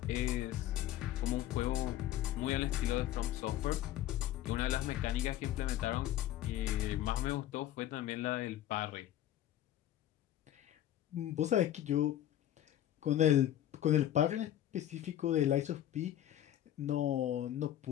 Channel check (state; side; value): quieter; right; 12.3 dB